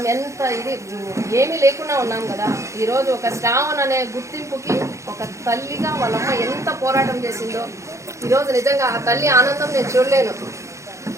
ఎంత ఇది ఏమీ లేకుండా ఉన్నాం కదా. ఈరోజు ఒక శ్రావణ్ అనే గుర్తింపుకి ఒక తల్లిగా వాళ్ళమ్మ ఎంత పోరాటం చేసిందో ఈరోజు నిజంగా ఆ తల్లి ఆనందం నేను చూడలేను.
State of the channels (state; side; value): late; left; 0.14 ms